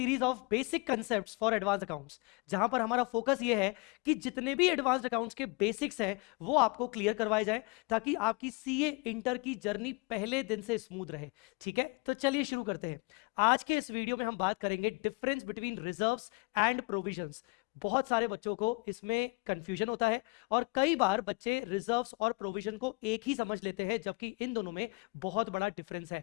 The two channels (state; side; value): quieter; right; 29.1 dB